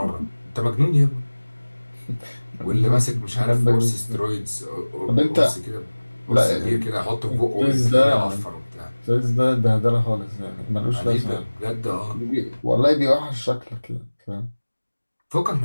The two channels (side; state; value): both; inverted; correlation -1.00